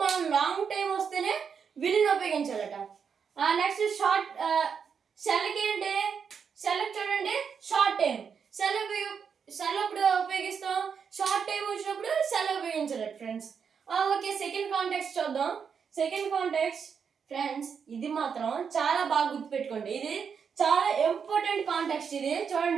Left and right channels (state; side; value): quieter; left; 6.6 dB